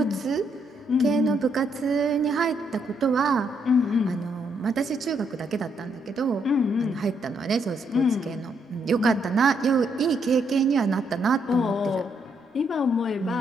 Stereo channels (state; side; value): normal; both; correlation 0.75